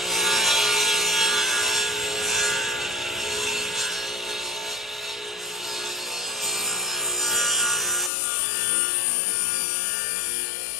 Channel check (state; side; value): drops out; right; at 8.1 s